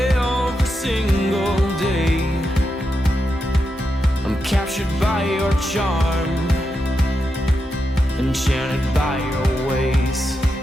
single day. I'm captured by your charm, enchanted by your ways.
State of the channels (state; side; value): normal; both; correlation 0.86